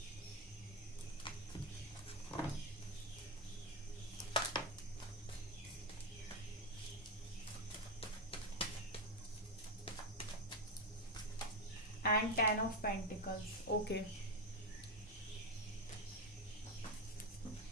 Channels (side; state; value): both; normal; correlation 0.10